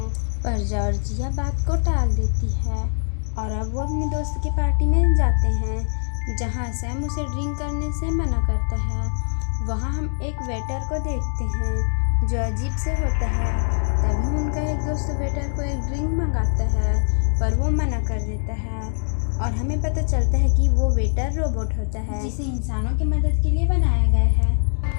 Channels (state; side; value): silent; right; digital silence